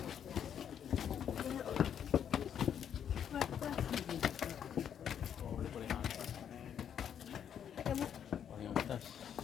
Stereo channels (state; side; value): quieter; right; 8.8 dB